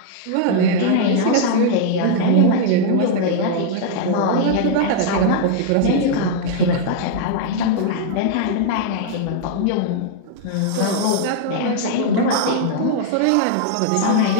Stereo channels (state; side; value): different; both; correlation -0.01